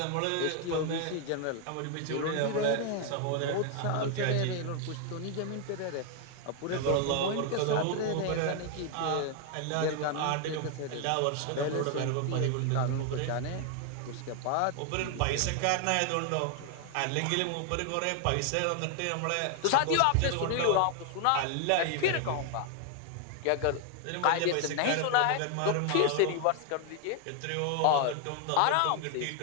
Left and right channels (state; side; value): different; both; correlation 0.00